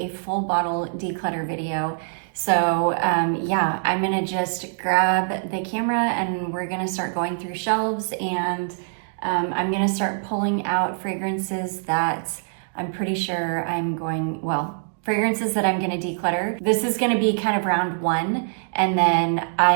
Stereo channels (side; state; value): left; silent; digital silence